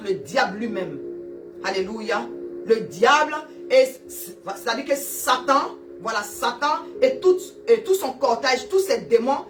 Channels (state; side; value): identical; both; correlation 1.00